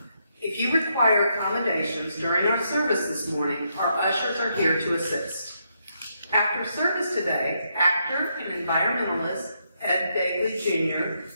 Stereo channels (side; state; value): both; inverted; correlation -0.78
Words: If you require accommodations during our service this morning, our ushers are here to assist. After service today, actor and environmentalist Ed Bagley Jr.